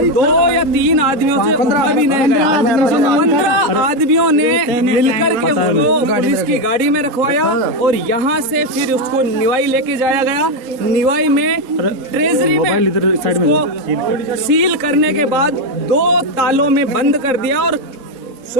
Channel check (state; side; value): late; left; 3.8 ms